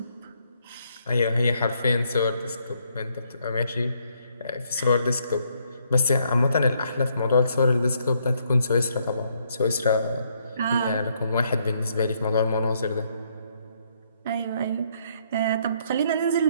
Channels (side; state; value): both; inverted; correlation -0.71